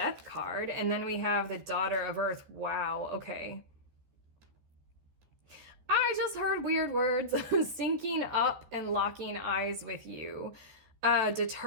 card. And then we have the daughter of earth. Wow. Okay. I just heard weird words. Syncing up and locking eyes with you.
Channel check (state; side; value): late; left; 13 ms